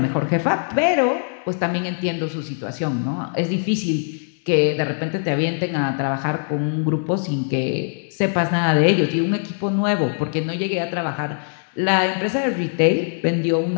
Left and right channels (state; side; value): silent; right; 64 dB below the other